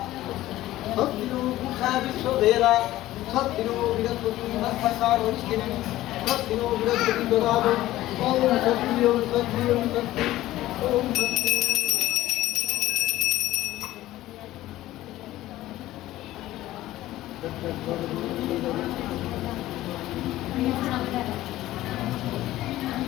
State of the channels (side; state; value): right; quieter; 15.5 dB